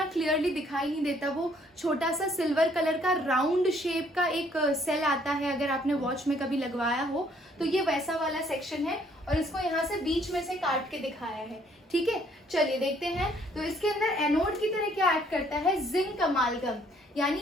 क्लियरली दिखाई नहीं देता। वो छोटा सा सिल्वर कलर का राउंड शेप का एक सेल आता है, अगर आपने वॉच में कभी लगवाया हो तो ये वैसा वाला सेक्शन है और इसको यहाँ से बीच में से काट के दिखाया है। ठीक है, चलिए देखते हैं। तो इसके अंदर एनोड की तरह क्या ऐड करता है? जिंक अमालगम,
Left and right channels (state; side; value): normal; both; correlation 0.64